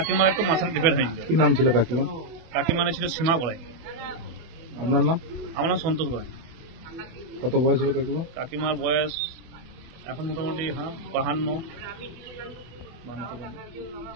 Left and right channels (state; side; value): late; left; 24 ms